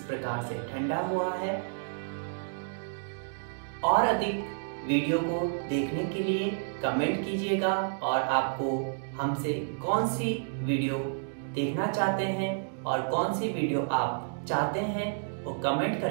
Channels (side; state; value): left; silent; digital silence